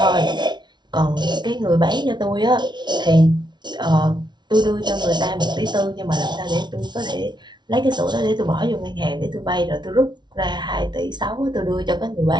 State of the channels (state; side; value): late; left; 0.21 ms